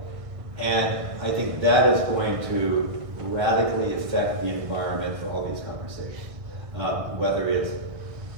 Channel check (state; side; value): late; left; 1.6 ms